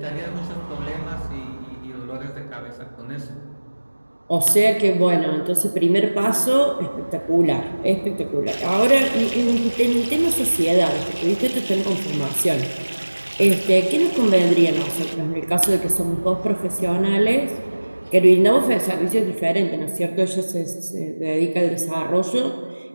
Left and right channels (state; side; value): inverted; both; correlation -1.00